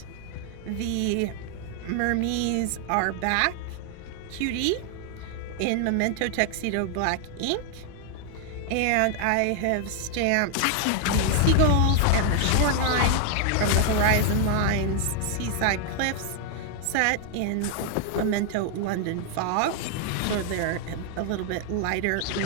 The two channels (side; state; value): both; different; correlation 0.00